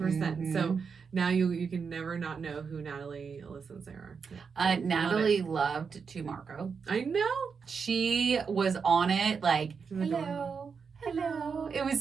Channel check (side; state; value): left; quieter; 5.8 dB